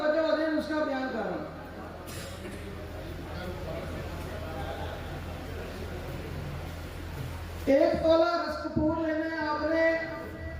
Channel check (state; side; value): identical; both; correlation 1.00